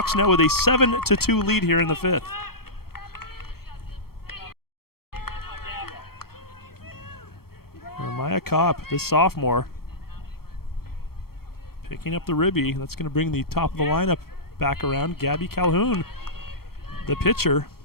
now with a 7-2 lead here in the fifth. Maya Kopp, this sophomore, picking up the ribby. That's going to bring the top of the lineup back around. Gabby Calhoun, the pitcher,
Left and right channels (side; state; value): right; late; 0.94 ms